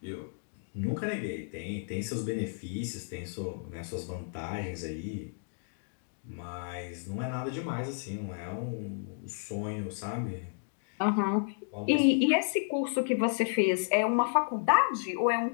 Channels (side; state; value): right; silent; digital silence